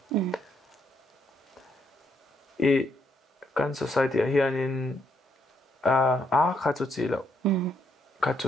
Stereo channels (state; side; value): normal; both; correlation 0.74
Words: kan society hianin kha chu chi lo kha